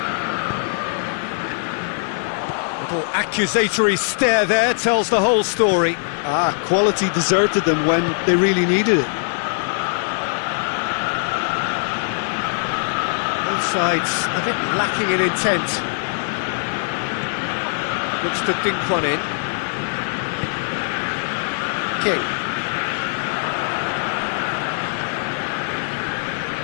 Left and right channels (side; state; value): right; silent; digital silence